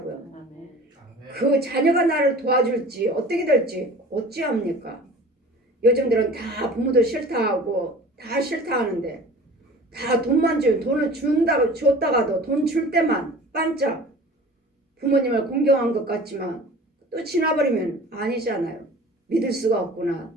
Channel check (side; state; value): both; normal; correlation 0.42